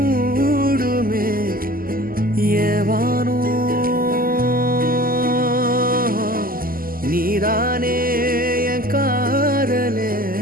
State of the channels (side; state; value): left; late; 0.42 ms